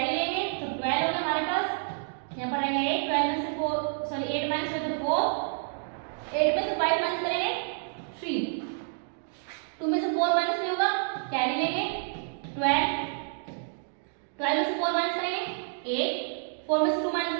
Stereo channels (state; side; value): silent; left; digital silence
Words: लेंगे तो 12 होगा हमारे पास। यहाँ पर रहेगा 8 12 में से 4 सॉरी 8 माइनस हुए तो 4 8 में से 5 माइनस करेंगे 3 2 में से 4 माइनस नहीं होगा कैरी लेंगे 12 12 में से 4 माइनस करेंगे 8 4 में से 2 माइनस